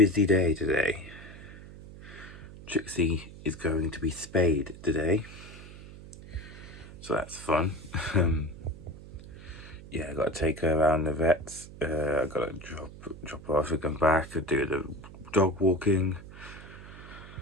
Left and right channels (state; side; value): noise; right; hum, 16 dB below the sound